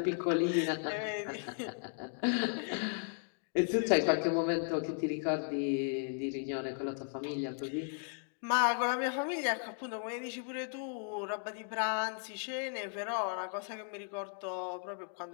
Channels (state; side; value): silent; right; 54 dB below the other